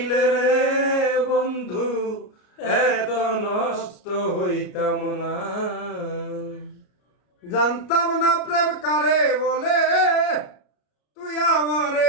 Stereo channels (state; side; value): late; right; 33 ms